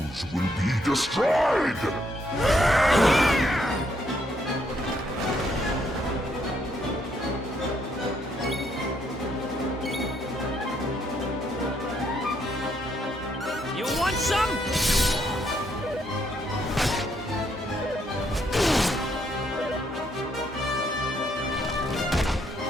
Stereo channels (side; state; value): both; normal; correlation 0.73